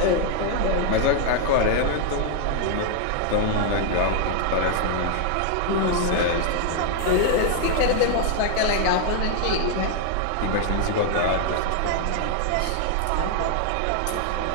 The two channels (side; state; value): both; different; correlation 0.00